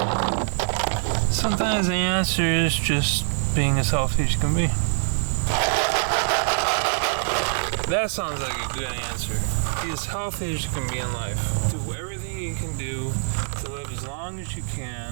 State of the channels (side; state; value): left; silent; 62 dB below the other